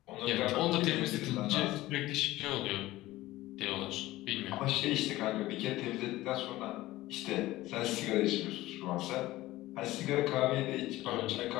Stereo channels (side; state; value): right; quieter; 17.2 dB